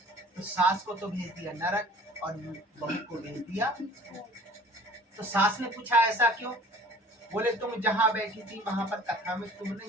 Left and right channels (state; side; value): normal; both; correlation 0.49